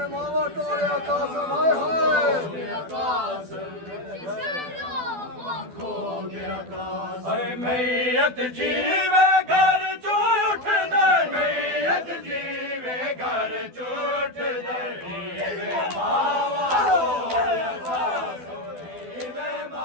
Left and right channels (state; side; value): late; left; 12 ms